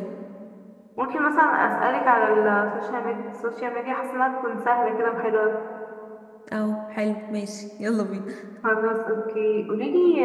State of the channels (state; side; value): identical; both; correlation 1.00